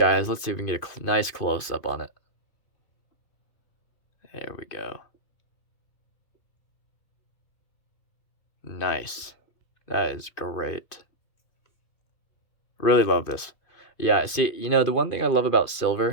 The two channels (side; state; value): right; late; 2.5 ms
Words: Let's see if we can get a nice close-up on it. There we go. Nice. That is great. Really love this. Yeah, see, the one thing I love about